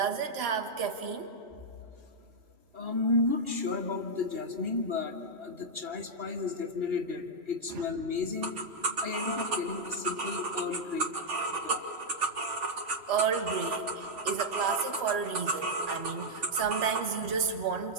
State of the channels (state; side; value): late; left; 3.0 ms